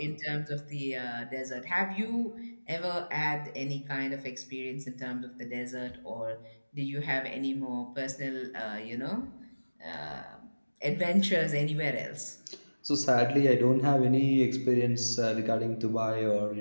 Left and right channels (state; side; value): inverted; both; correlation -1.00